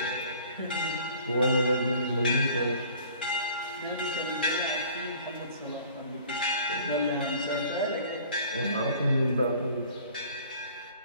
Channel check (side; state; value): both; inverted; correlation -0.51